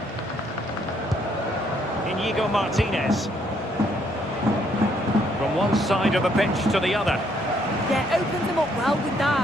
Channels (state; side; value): normal; both; correlation 0.69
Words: Inigo Martinez. From one side of the pitch to the other. Yeah, opened them up well with